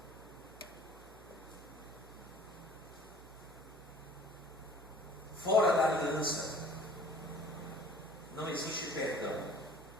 Fora da aliança não existe perdão.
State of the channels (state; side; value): noise; right; hum, 19 dB below the sound